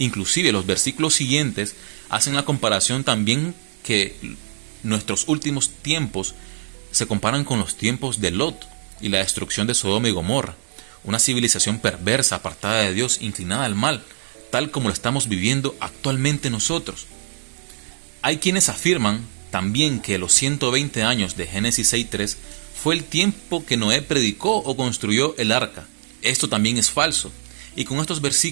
los versículos siguientes hacen la comparación también que nuestros últimos tiempos se comparan con los tiempos de Lot y la destrucción de Sodoma y Gomorra, una civilización perversa, apartada de Dios, inclinada al mal, tal como lo estamos viviendo actualmente nosotros. Hay quienes afirman también que los 120 años de Génesis 6:3 fue el tiempo que Noé predicó o construyó el arca. Esto también es falso, y con estos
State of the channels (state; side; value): silent; left; 64 dB below the other